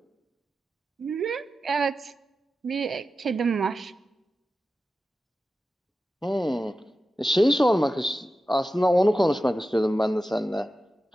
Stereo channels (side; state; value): both; normal; correlation 0.93